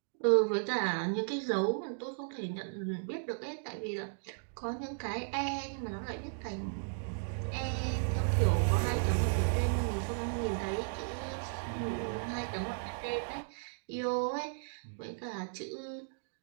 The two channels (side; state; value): left; silent; digital silence